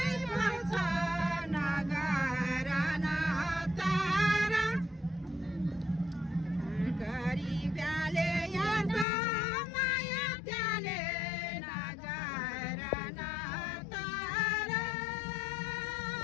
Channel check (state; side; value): drops out; right; at 9.1 s